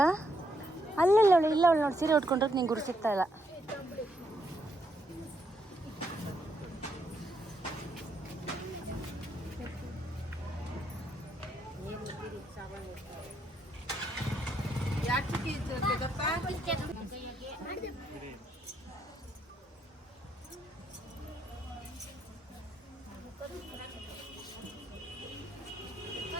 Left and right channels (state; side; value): normal; both; correlation 0.76